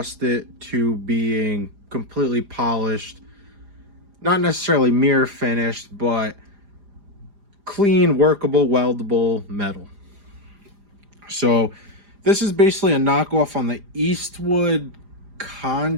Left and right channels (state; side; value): late; left; 4.9 ms